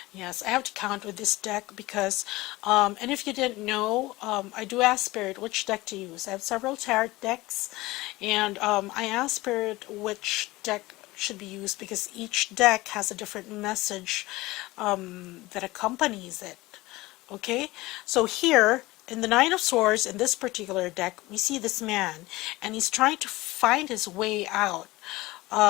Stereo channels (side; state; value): right; quieter; 19.9 dB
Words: Yes, I have to count with this deck because, and if you didn't know, I do ask Spirit which deck to use. I have several tarot decks, and I ask Spirit which deck should be used because each deck has a different message that accompanies it. Okay, so here, in the Nine of Swords, in this particular deck, we see this man, and he's trying to find his way out